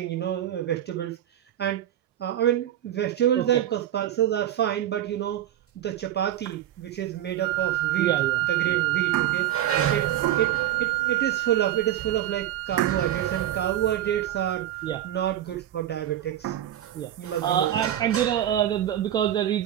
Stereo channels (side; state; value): left; quieter; 12.0 dB